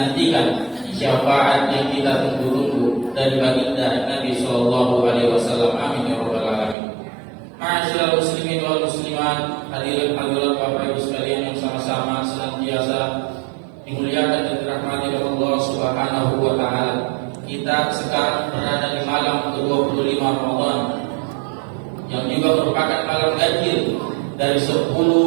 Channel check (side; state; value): left; drops out; at 6.8 s